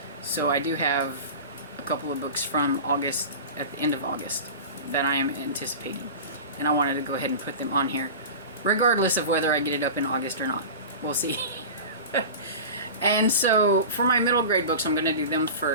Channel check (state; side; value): inverted; both; correlation -0.31